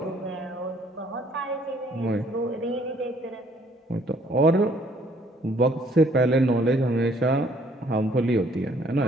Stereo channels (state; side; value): normal; both; correlation 0.63